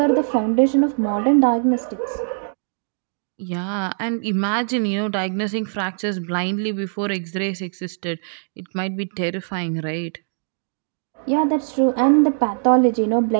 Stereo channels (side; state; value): left; silent; digital silence